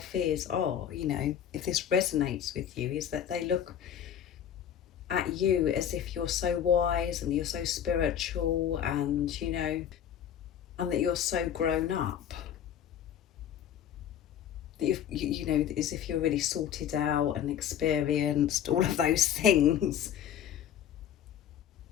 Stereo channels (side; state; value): right; quieter; 9.5 dB